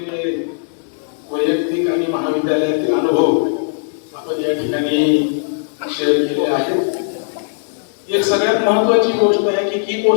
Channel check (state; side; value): silent; right; digital silence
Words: वैयक्तिक आणि महाविद्यालयातील अनुभव आपण या ठिकाणी शेअर केले आहेत. एक सगळ्यात महत्वाची गोष्ट आहे की की